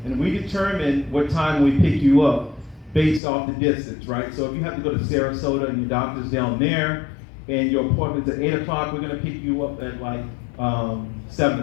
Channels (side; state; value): right; drops out; at 3.2 s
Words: And we determine what time we pick you up based off the distance, right? So if you have to go to Sarasota and your doctor's down there and your appointment's at 8 o'clock, we're gonna pick you up at like 7